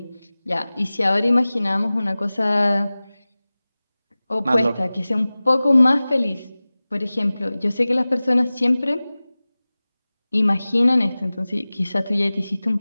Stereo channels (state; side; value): inverted; both; correlation -0.98